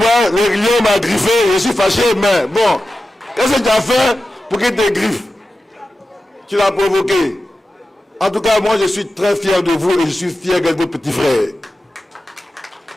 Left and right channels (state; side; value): normal; both; correlation 0.93